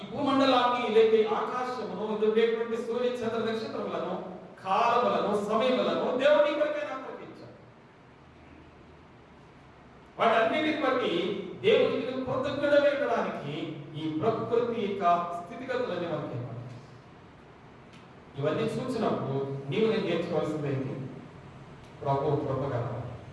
భూమండలాన్ని లేక ఆకాశమును ఉండేటువంటి సూర్య చంద్ర నక్షత్రములను, కాలములను, సమయములను దేవుని కొరకైనా ప్రకటించాడు. వాటన్నిటిని బట్టి దేవునికి కృతజ్ఞుడమేయడానికి ఈ ప్రకృతి యొక్క స్థితిగతులన్నీ మనకి ఇవన్నీ చూసినప్పుడు నీవు నేను నేర్చుకోవాల్సిందేంటి? ప్రభు కృపగలవు.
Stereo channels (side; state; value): both; identical; correlation 1.00